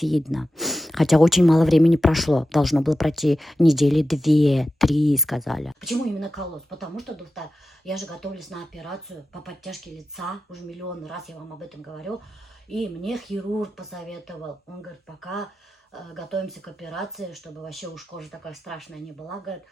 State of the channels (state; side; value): normal; both; correlation 0.91